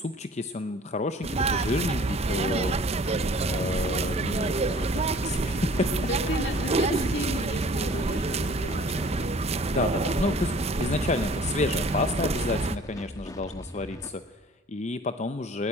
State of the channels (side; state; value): both; normal; correlation 0.50